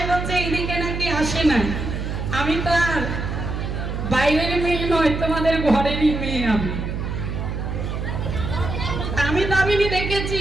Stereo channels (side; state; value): right; noise; hum, 4 dB below the sound